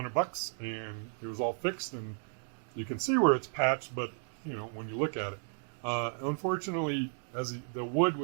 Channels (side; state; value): left; silent; 55 dB below the other